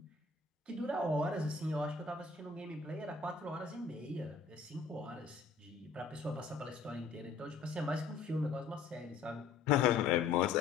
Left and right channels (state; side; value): quieter; right; 4.9 dB